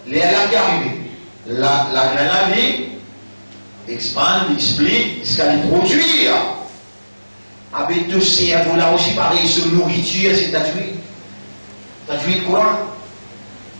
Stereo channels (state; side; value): inverted; both; correlation -1.00